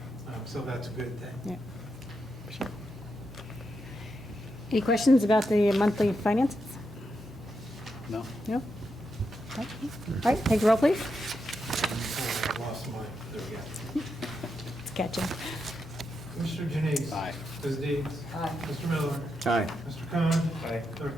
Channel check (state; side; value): normal; both; correlation 0.84